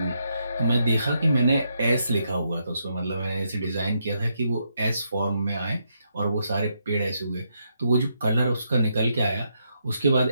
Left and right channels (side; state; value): both; inverted; correlation -0.79